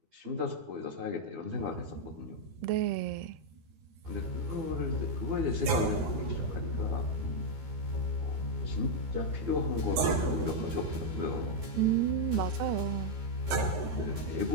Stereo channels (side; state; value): left; late; 13 ms